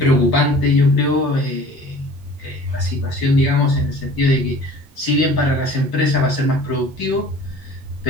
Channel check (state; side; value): normal; both; correlation 0.46